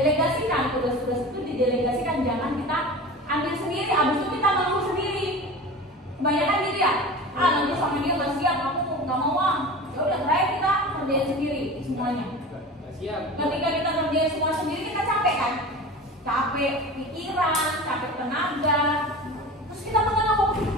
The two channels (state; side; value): normal; both; correlation 0.34